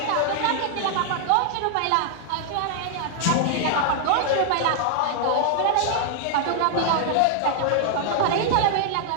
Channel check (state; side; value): different; both; correlation 0.00